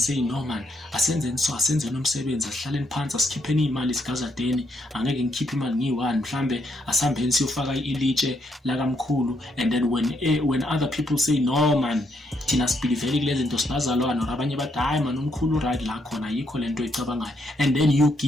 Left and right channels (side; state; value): both; normal; correlation 0.76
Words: no man, asenze nomsebenzi, asihlaleni phansi, asikhipheni imali sikazadeni, angeke ngikhiphe imali ngiyi-1, mhlambe asihambeni siyofaka ilitshe lakamkhulu. And then when other people say, no man, thina sibhilivele kulezi zinto sibazalwana, or abanye bathi hayi man umkhulu right la khona yikho lento icabangayo, and then you